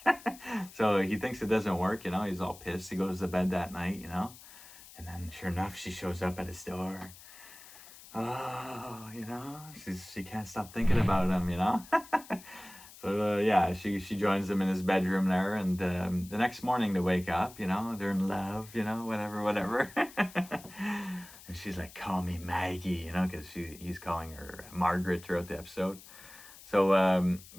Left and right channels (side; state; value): left; noise; hiss, 19 dB below the sound